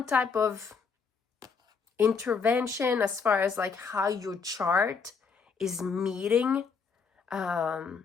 type of intervention as far as like how your chart is meeting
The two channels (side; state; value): right; quieter; 5.5 dB